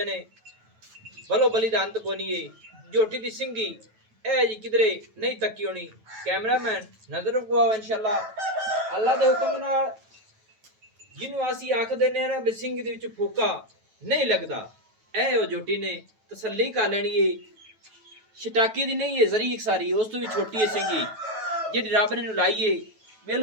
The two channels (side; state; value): left; late; 9.2 ms